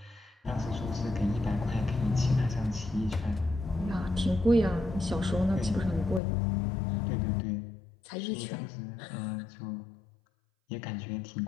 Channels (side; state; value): right; drops out; at 6.2 s